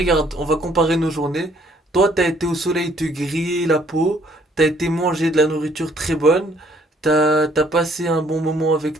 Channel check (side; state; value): both; normal; correlation 0.63